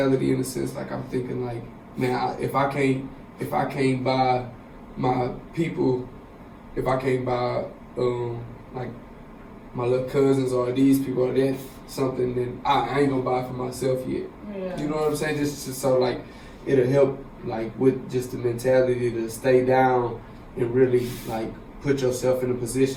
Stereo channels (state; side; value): identical; both; correlation 1.00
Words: in a sense. Like I'm thinking man, if I can't buy my people, if I can't buy my little cousins or these people or that something, then I ain't gonna buy it for myself yet. Yeah. You know what I'm saying? Just so it'll help with just the mentality to stay down and really put yourself in a